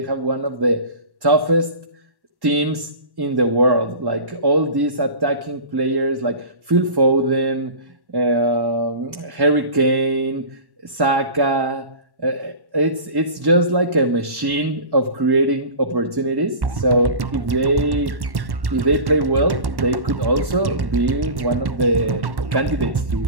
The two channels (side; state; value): left; late; 1.1 ms